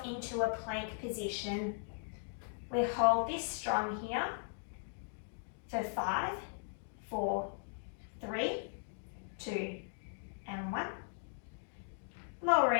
into a plank position. We hold this strong here for 5, 4, 3, 2, and 1.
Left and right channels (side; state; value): right; silent; digital silence